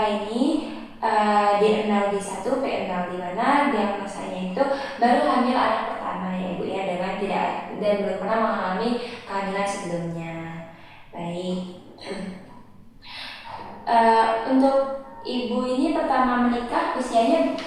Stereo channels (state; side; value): identical; both; correlation 1.00